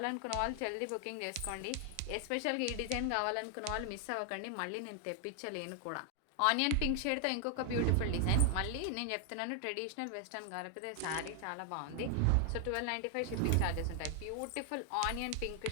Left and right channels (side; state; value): both; different; correlation 0.00